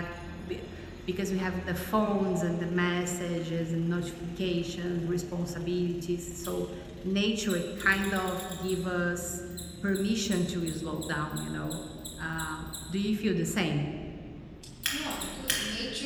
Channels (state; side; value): identical; both; correlation 1.00